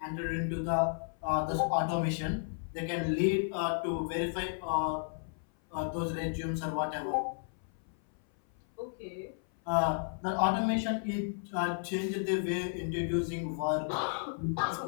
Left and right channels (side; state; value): right; silent; 56 dB below the other